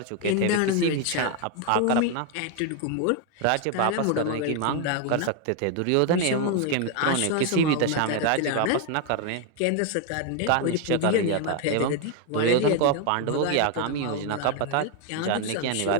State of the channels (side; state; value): both; different; correlation 0.01